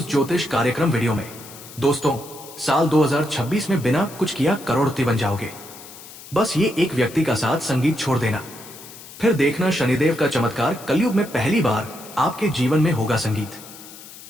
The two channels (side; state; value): left; noise; hiss, 17 dB below the sound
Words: ज्योतिष कार्यक्रम वीडियो में। दोस्तों, साल 2026 में बिना कुछ किया करोड़पति बन जाओगे। बस ये एक व्यक्ति का साथ संगीत छोड़ देना, फिर देखना शनिदेव का चमत्कार। कलयुग में पहली बार आपके जीवन में होगा संगीत।